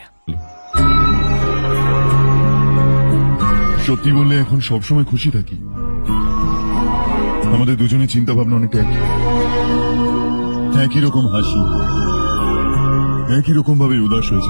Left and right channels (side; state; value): both; inverted; correlation -1.00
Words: সত্যি বললে এখন সবসময় খুশি থাকি। আমাদের দুজনের চিন্তা ভাবনা অনেকটা একই রকম হাসি, একই রকম ভাবে উদাস